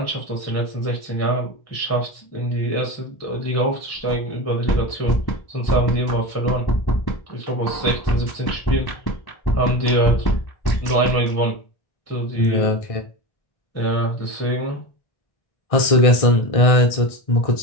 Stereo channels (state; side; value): late; right; 1.6 ms